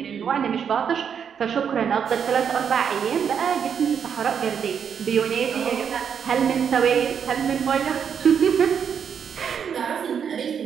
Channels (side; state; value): left; quieter; 7.5 dB